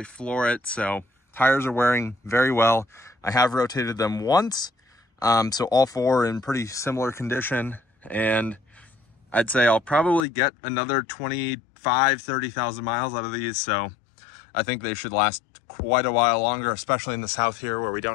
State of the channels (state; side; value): drops out; right; at 10.2 s